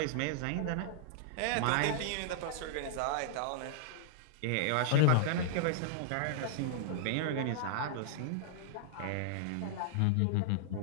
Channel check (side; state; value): both; different; correlation -0.01